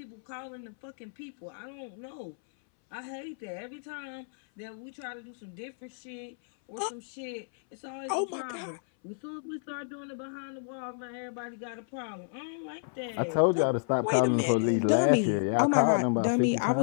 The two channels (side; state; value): right; silent; 57 dB below the other